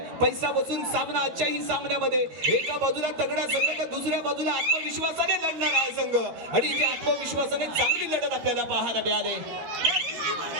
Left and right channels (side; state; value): left; late; 13 ms